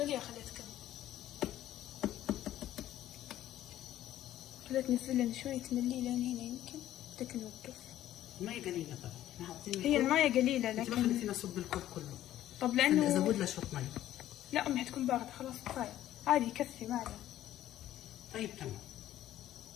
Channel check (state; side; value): quieter; right; 13.0 dB